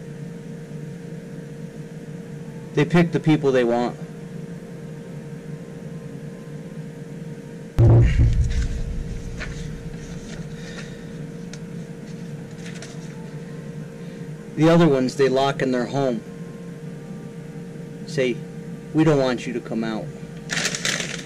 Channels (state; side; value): identical; both; correlation 1.00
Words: They pick the people they want. The other ones they lock in their home. Say, we don't want you to come out.